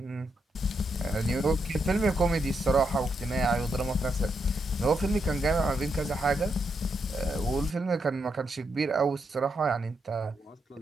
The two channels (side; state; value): both; normal; correlation 0.81